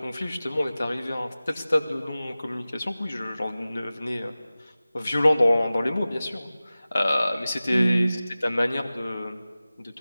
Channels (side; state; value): both; inverted; correlation -0.97